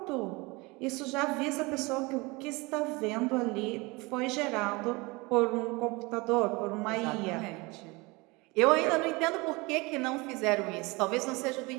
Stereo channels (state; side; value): quieter; left; 25.1 dB